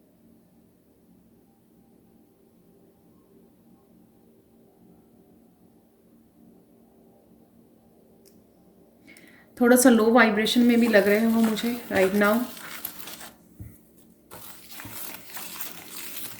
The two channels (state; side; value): identical; both; correlation 1.00